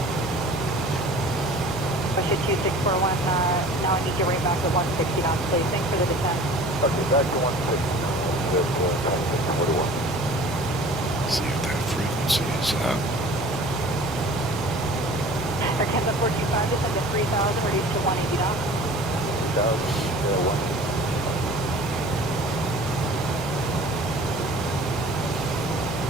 Russia 2641, now I need you right back at 160 knots, please. Thanks for the descent. Okay, back to 160. See if that frequency is up. Air Canada 425, descend to 3000, reduce to 180 knots. 1.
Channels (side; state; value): right; noise; hum, 17 dB below the sound